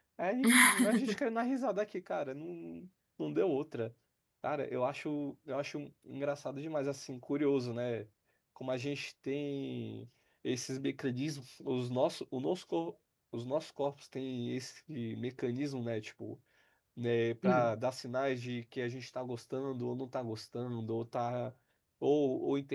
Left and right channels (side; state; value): both; identical; correlation 1.00